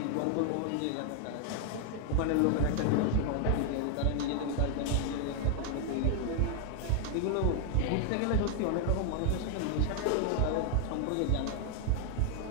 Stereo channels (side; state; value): both; different; correlation 0.01